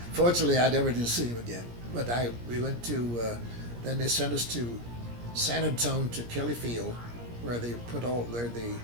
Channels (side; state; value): left; late; 17 ms